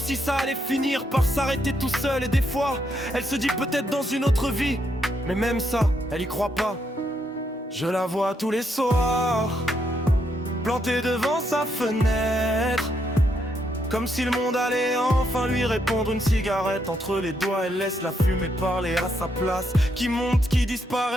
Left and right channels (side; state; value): both; normal; correlation 0.77